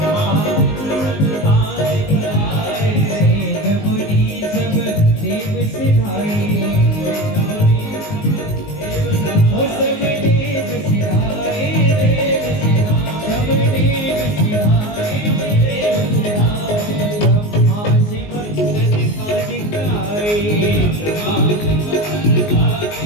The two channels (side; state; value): right; late; 19 ms